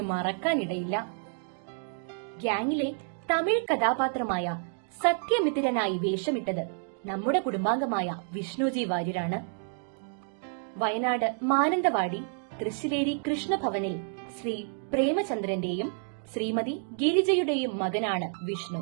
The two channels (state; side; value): silent; left; 56 dB below the other